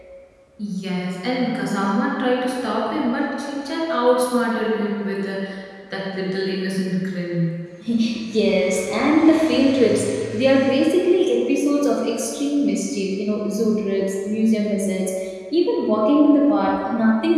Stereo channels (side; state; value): both; identical; correlation 1.00